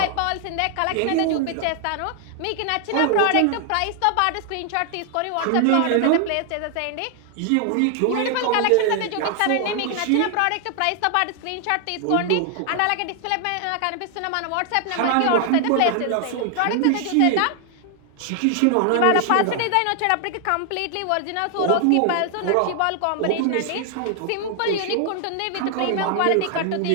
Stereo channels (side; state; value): both; different; correlation 0.00